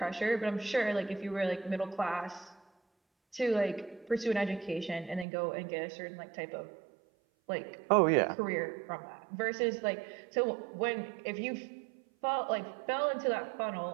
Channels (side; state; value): left; drops out; at 5.2 s